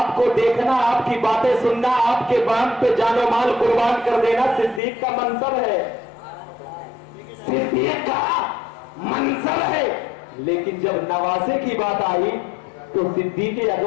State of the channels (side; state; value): right; drops out; at 4.8 s